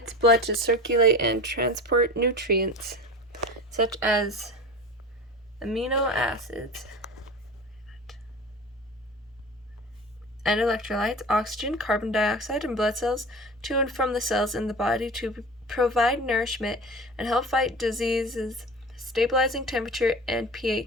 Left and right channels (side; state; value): both; normal; correlation 0.34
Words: blood to circulate and transport nutrients such as amino acids and electrolytes, oxygen, carbon dioxide, and blood cells to and from the cells in the body to provide nourishment and help fight diseases, stabilizing temperature and